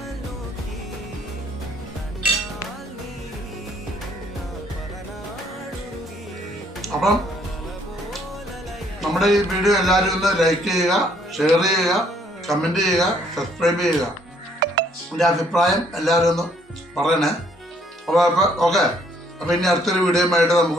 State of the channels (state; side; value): normal; both; correlation 0.65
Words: അപ്പം നമ്മുടെ ഈ വീഡിയോ എല്ലാവരും ഒന്ന് ലൈക്ക് ചെയ്യുക, ഷെയർ ചെയ്യുക, കമൻറ്റ് ചെയ്യുക, സബ്സ്ക്രൈബ് ചെയ്യുക. എൻ്റെ അഭിപ്രായം എല്ലാവരും ഒന്ന് പറയണേ. അപ്പോൾ ഓക്കെ. അപ്പോൾ ഇനി അടുത്തൊരു വീഡിയോയുമായിട്ട്